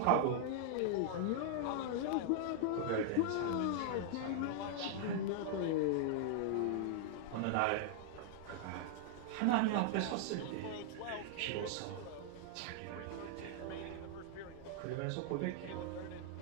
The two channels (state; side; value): different; both; correlation -0.01